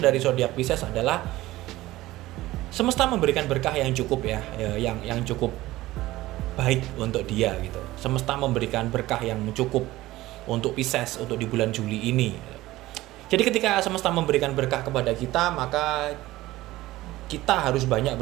zodiak Pisces adalah semesta memberikan berkah yang cukup ya, yang cukup baik untuk dia gitu. Semesta memberikan berkah yang cukup untuk Pisces untuk di bulan Juli ini. Jadi ketika semesta memberikan berkah kepada kita, maka kita harus banyak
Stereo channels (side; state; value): left; quieter; 17.3 dB